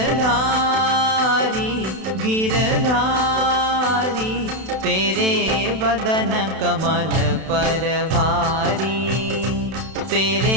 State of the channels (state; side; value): late; left; 32 ms